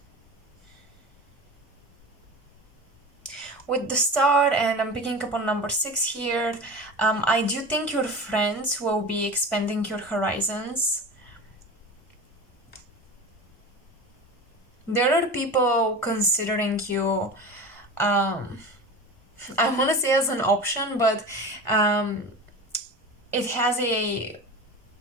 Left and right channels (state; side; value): normal; both; correlation 0.31